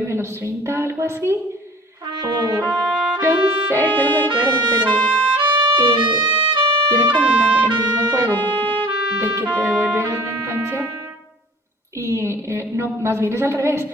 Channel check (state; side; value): normal; both; correlation 0.47